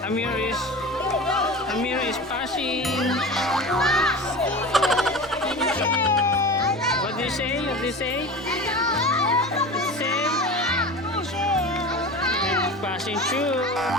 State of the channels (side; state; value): both; normal; correlation 0.32